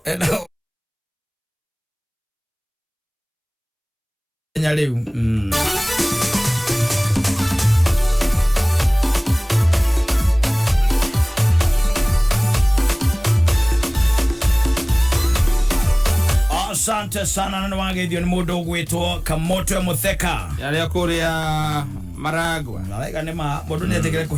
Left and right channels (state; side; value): identical; both; correlation 1.00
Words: nyaliu. Asante sana na wangeithio ni mundu gwitwo Kamoto Mutheka. Yale akuria Maragwa. Nalaiga ni mundu ni ategere